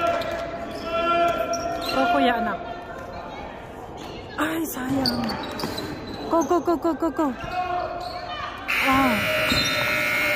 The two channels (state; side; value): identical; both; correlation 1.00